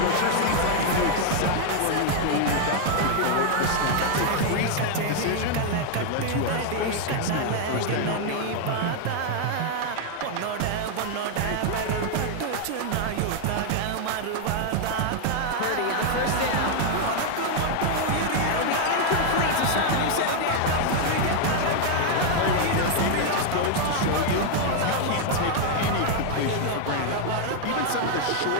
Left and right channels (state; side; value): different; both; correlation 0.00